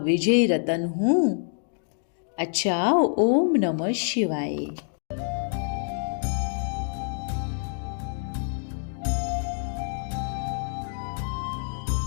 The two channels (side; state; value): right; silent; digital silence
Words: रतन हूँ। अच्छा, ओम नमः शिवाय।